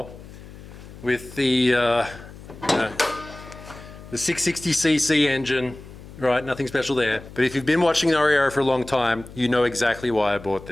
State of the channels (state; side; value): noise; left; hum, 17 dB below the sound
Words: with the 660cc engine. Right, nothing special there. But if you've been watching Noriyaro for a long time, you know exactly why I bought